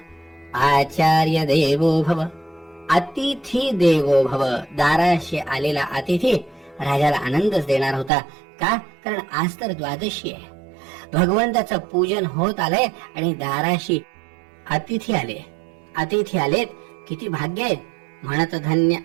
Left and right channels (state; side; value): drops out; left; at 8.1 s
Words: आचार्य देवो भव, अतिथी देवो भव. दाराशी आलेला अतिथी राजाला आनंदच देणार होता. का? कारण आज तर द्वादशी आहे. भगवंताचं पूजन होत आलंय आणि दाराशी अतिथी आले. अतिथी आलेत, किती भाग्य आहे. म्हणत धन्य